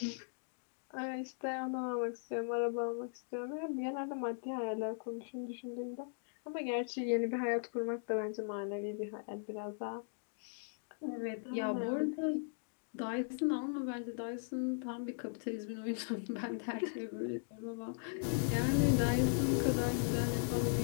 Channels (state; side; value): silent; right; digital silence